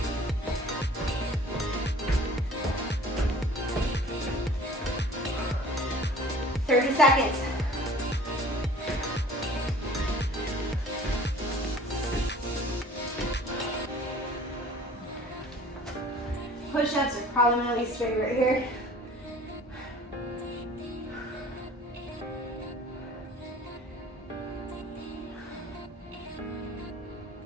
Seconds. Push-ups are probably my least favorite here.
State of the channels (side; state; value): both; normal; correlation 0.48